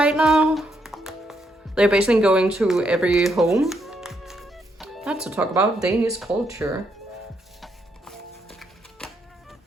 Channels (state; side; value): normal; both; correlation 0.77